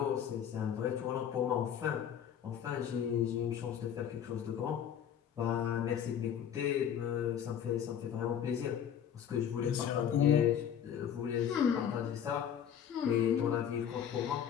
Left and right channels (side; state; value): right; quieter; 8.9 dB